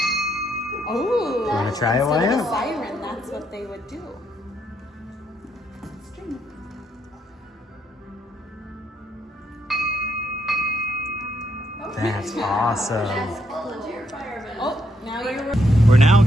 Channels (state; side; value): normal; both; correlation 0.75